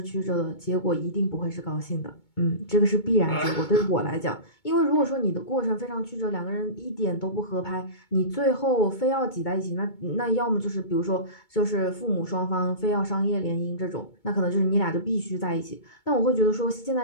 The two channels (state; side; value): late; right; 2.2 ms